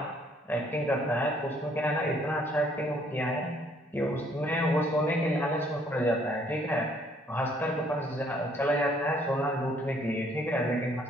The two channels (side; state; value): both; normal; correlation 0.64